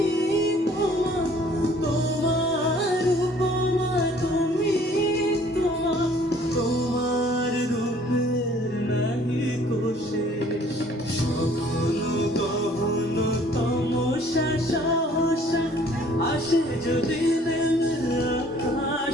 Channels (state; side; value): normal; both; correlation 0.57